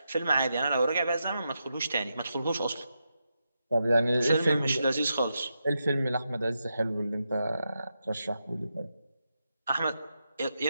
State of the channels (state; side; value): inverted; both; correlation -0.86